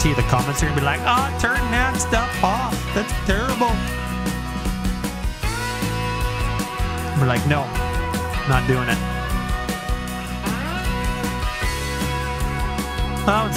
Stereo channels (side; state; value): both; identical; correlation 1.00